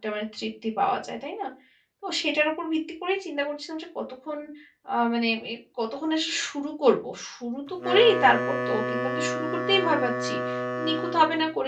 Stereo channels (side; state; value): both; identical; correlation 1.00